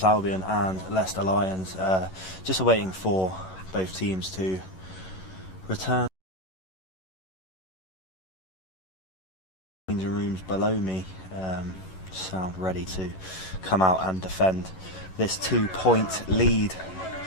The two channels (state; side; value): late; right; 11 ms